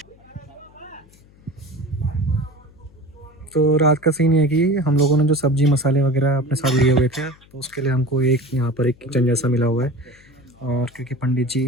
तो रात का सीन ये है कि हम लोगों ने जो सब्जी मसाले वगैरह अपने साथ लिए हुए थे, तो उसके लिए हमको यहाँ पर एक किचन जैसा मिला हुआ है। और क्योंकि पंडित जी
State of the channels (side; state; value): left; noise; hum, 27 dB below the sound